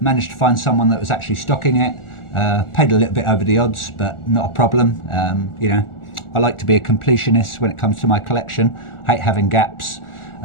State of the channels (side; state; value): right; late; 1.4 ms